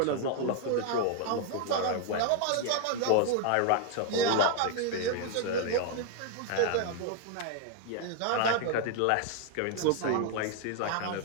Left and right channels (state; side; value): different; both; correlation 0.00